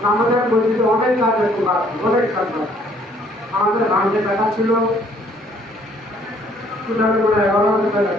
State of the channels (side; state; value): both; normal; correlation 0.62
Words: আমাদের মসজিদে অনেক কাজ আছে, অনেক কাজ আছে। আমাদের ভাঙতে টাকা ছিল 11,000 টাকা